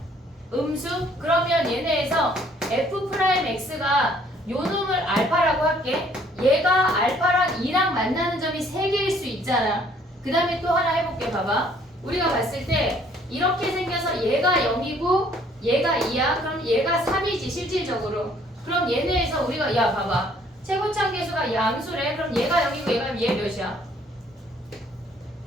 음수? 그러면 얘네에서 F'X가 요 놈을 알파라고 할게. 얘가 알파랑 2랑 만나는 점이 3개일 수 있잖아. 그 다음에 또 하나 해볼게. 봐봐. 우리가 봤을 때 이렇게 생겨서 얘가 0이고 얘가 2야. 그럼 얘가 3이지 실질적으로. 그럼 얘네에서 우리가 야 봐봐. 최고차 계수가 양수래. 그럼 얘가 0이고 얘가 얘 몇이야?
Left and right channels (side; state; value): both; normal; correlation 0.61